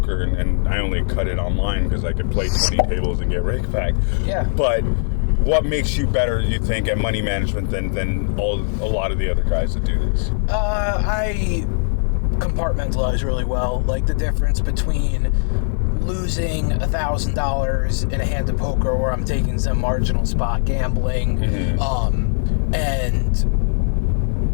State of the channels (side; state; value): right; silent; digital silence